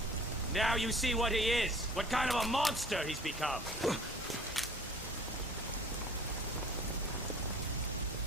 Now you see what he is. What kind of a monster he's become.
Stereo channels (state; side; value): normal; both; correlation 0.48